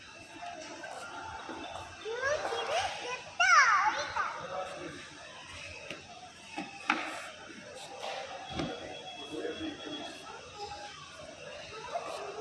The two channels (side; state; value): both; identical; correlation 1.00